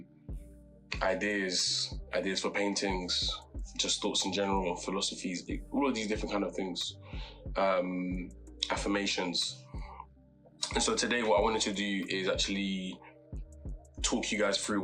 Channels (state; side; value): identical; both; correlation 1.00